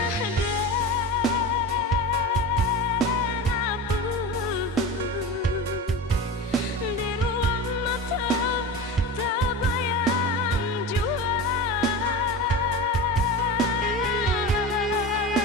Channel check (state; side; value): normal; both; correlation 0.28